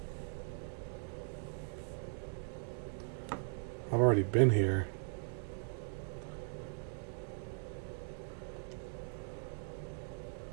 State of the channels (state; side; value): silent; left; 51 dB below the other